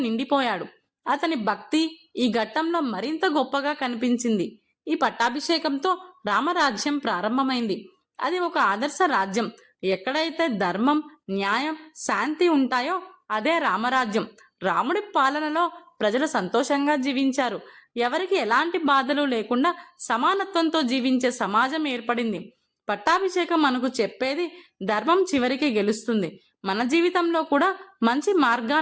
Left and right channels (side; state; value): both; identical; correlation 1.00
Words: అతని భక్తి ఈ ఘట్టంలో మరింత గొప్పగా కనిపించింది. ఈ పట్టాభిషేకంతో రామరాజ్యం ప్రారంభమైంది. అది ఒక ఆదర్శ రాజ్యం. ఎక్కడైతే ధర్మం, న్యాయం, శాంతి ఉంటాయో అదే రామరాజ్యం. రాముడి పాలనలో ప్రజలు సంతోషంగా జీవించారు. ఎవరికి ఎలాంటి బాధలు లేకుండా సమానత్వంతో జీవించే సమాజం ఏర్పడింది. పట్టాభిషేకం మనకు చెప్పేది ధర్మం చివరికి గెలుస్తుంది. మన జీవితంలో కూడా మంచి